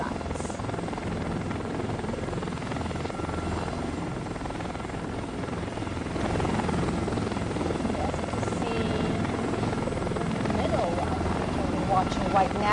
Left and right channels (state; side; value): identical; both; correlation 1.00